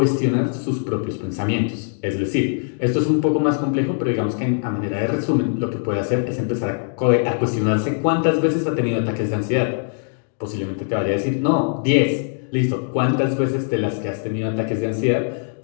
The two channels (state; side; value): silent; right; 62 dB below the other